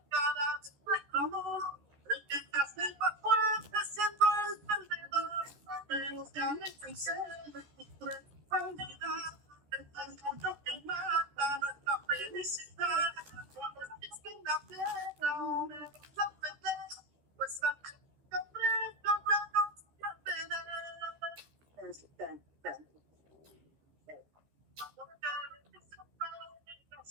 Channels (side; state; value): left; late; 14 ms